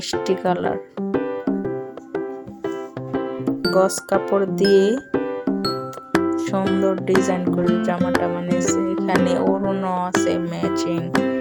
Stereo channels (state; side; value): identical; both; correlation 1.00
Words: কালার, গস কাপড় দিয়ে সুন্দর ডিজাইন করে জামাটা বানিয়েছে। এখানে ওড়না আছে ম্যাচিং,